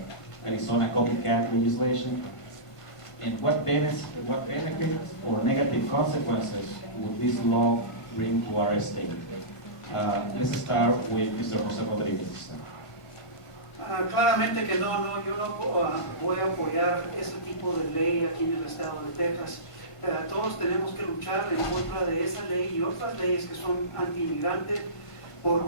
Arizona copycat legislation. And what benefits or negative consequences would this law bring to our state? Let's start with Mr. José Rodríguez. Claramente que no, yo no voy a apoyar ese tipo de ley aquí en el estado de Texas. Todos tenemos que luchar en contra de esa ley y otras leyes que son anti-inmigrantes,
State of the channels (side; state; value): right; late; 1.5 ms